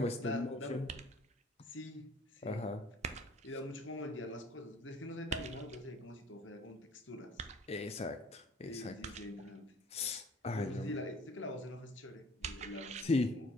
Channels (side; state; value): both; normal; correlation 0.52